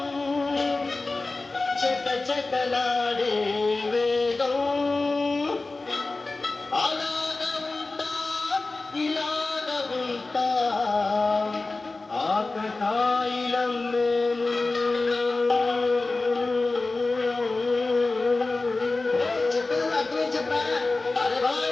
చక చకలాడే వేగం అలాగ ఉంటా ఇలాగ ఉంటా ఆకతాయిలం మేము చెప్పేది అర్థమే చెప్పా అరే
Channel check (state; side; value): quieter; right; 3.4 dB